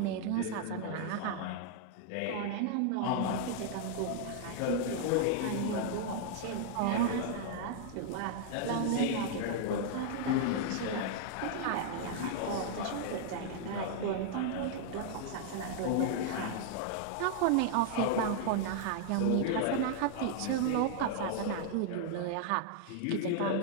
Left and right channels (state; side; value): different; both; correlation -0.01